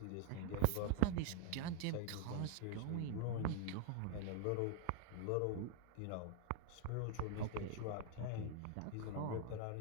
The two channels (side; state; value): both; different; correlation 0.00